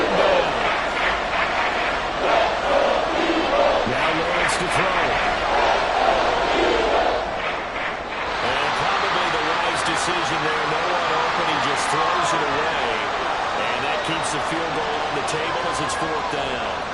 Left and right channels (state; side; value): identical; both; correlation 1.00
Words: down. Now Lawrence to throw. And probably the wise decision there. No one open. He just throws it away. And that keeps the field goal on the table as it's 4th down.